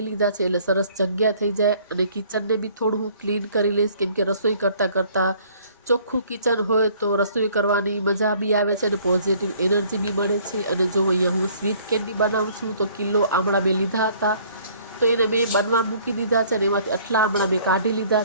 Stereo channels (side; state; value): both; inverted; correlation -0.57